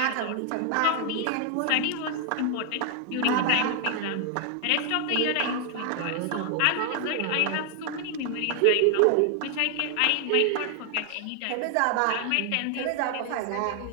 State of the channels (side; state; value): both; different; correlation 0.00